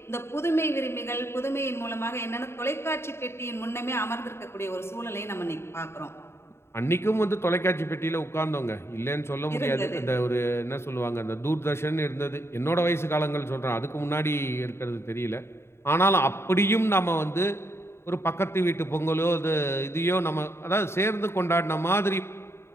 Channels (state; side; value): late; right; 0.12 ms